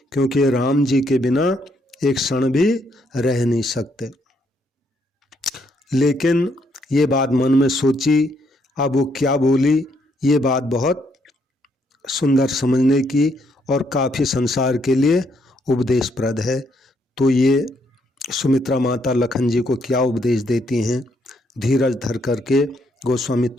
राम जी के बिना एक क्षण भी रह नहीं सकते। लेकिन ये बात मन में सोची, अब वो क्या बोली, ये बात बहुत सुंदर समझने की और काफ़ी संसार के लिए उपदेशप्रद है। तो ये सुमित्रा माता लखन जी को क्या उपदेश देती हैं, धीरज धर करके गोस्वामी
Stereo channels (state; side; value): normal; both; correlation 0.73